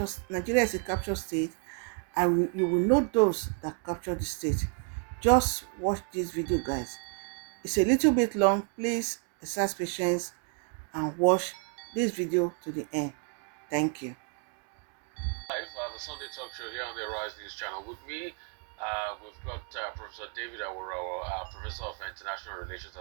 state, and you will know those that captured the state. Just watch this video, guys. It's a little bit long. Please exercise patience and watch this video to the end. Thank you. Live, the Sunday Talk Show here on the Arise News Channel. With me, we've got Professor David Awurawa, Professor of International Relations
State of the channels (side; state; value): left; quieter; 39.7 dB